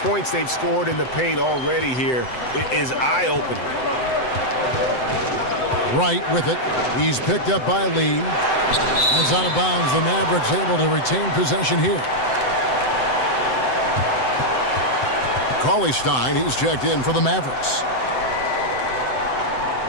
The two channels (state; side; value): late; right; 7.9 ms